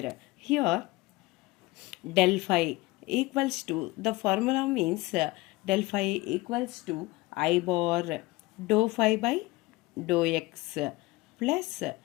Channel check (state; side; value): quieter; right; 20.8 dB